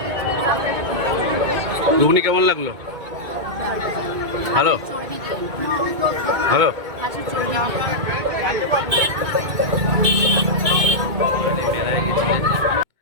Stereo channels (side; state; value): left; late; 2.1 ms